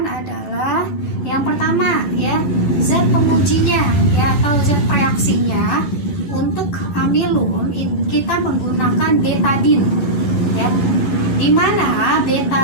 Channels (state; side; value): late; right; 11 ms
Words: adalah yang pertama ya, zat pengujinya ya atau zat reaksinya. Untuk amilum kita menggunakan betadin ya, dimana